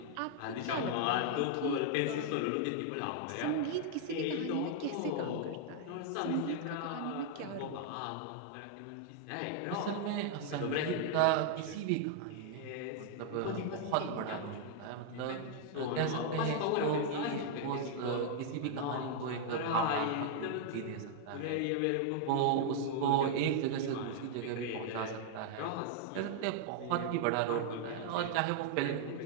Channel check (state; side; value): different; both; correlation 0.00